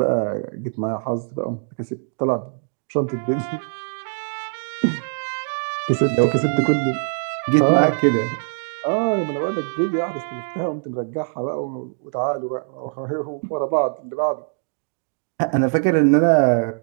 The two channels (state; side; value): silent; left; digital silence